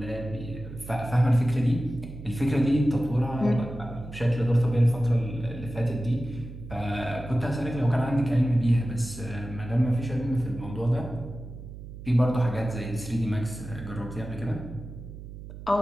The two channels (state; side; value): noise; right; hum, 13 dB below the sound